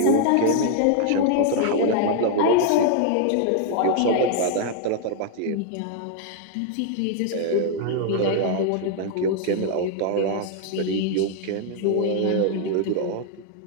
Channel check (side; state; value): both; different; correlation 0.00